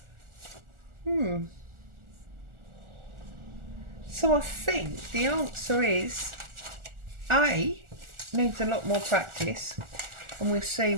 So I think the answer is A, needs a lot more practice, and we'll see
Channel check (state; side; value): late; left; 1.4 ms